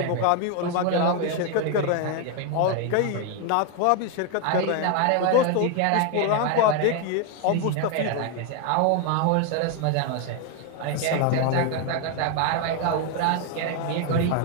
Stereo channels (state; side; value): different; both; correlation 0.01